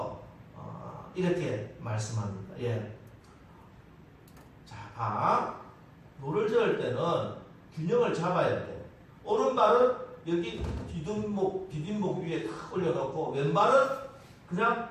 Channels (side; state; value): both; identical; correlation 1.00